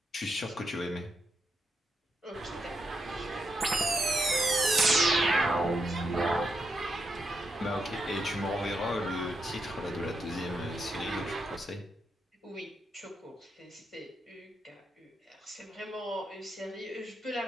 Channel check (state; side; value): normal; both; correlation 0.83